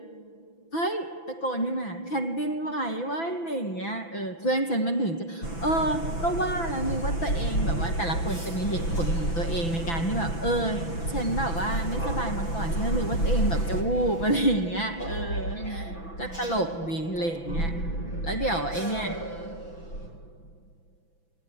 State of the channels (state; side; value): late; right; 6.0 ms